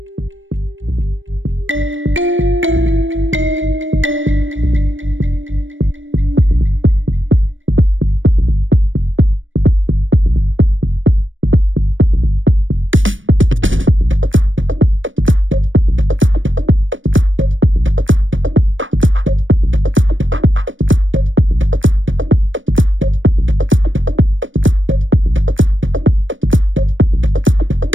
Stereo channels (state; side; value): late; left; 0.56 ms